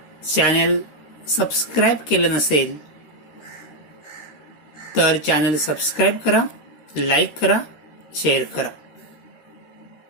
channel subscribe केलं नसेल तर चॅनल सबस्क्राइब करा, लाईक करा, शेअर करा.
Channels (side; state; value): right; late; 14 ms